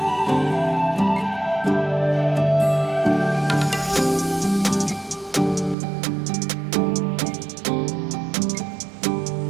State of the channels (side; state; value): left; drops out; at 5.8 s